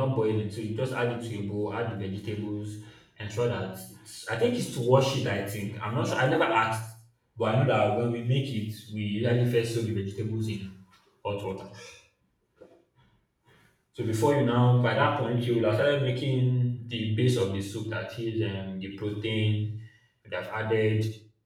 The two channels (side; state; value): both; identical; correlation 1.00